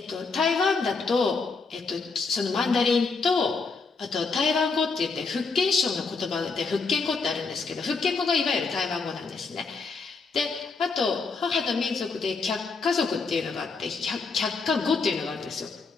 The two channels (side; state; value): right; quieter; 4.5 dB